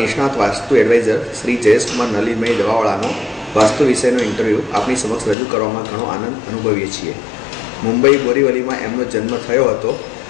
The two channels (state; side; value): drops out; right; at 5.4 s